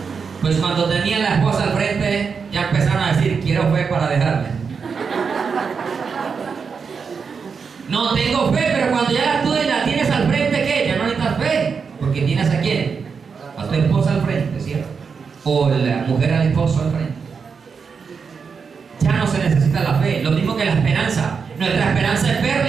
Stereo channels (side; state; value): left; quieter; 5.7 dB